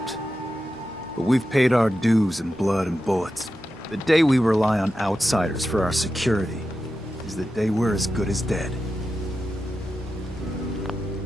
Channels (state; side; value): normal; both; correlation 0.90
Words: But we've paid our dues in blood and bullets. The day we rely on outsiders for our security is the day we're as good as dead.